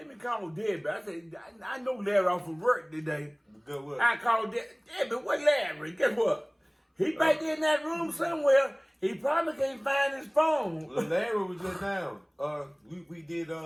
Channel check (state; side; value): identical; both; correlation 1.00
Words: me call Debbie. I said, I know Larry off from work today. Good work. I called Debbie. What Larry? Guess what? He back in that room somewhere. He probably can't find his phone. Larry was just down. We did